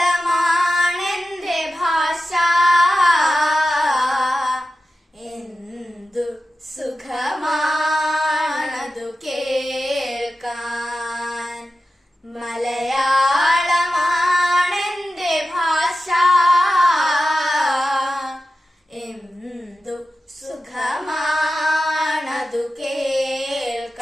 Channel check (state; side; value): normal; both; correlation 0.93